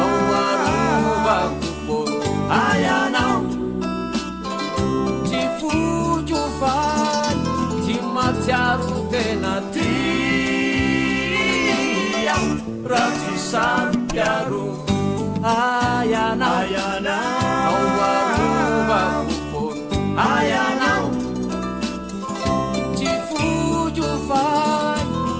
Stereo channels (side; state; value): both; identical; correlation 1.00